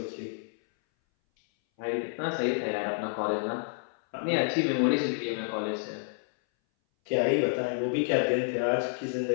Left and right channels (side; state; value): right; silent; 58 dB below the other